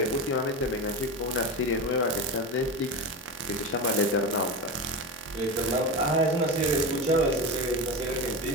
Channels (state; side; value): normal; both; correlation 0.21